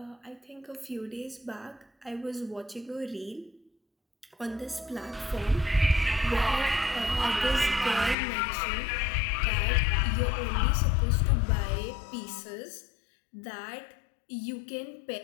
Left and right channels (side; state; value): right; drops out; at 8.2 s